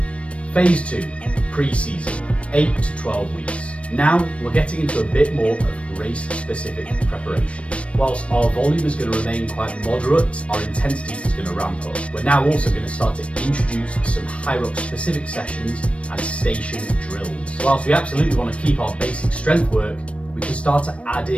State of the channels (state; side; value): late; right; 0.062 ms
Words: Phase 2, pre-season, 8 to 12 weeks. Now we're getting into a bit more of race-specific preparation. Whilst our volume is going to remain quite moderate, our intensity is going to ramp up. We're now also going to start to introduce some HYROX-specific sessions and station drills. Whilst we absolutely want to keep our basic strength work, we can start to add